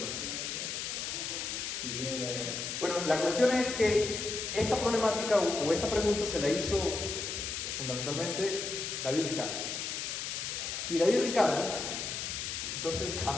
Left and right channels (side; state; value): left; noise; hiss, 4 dB below the sound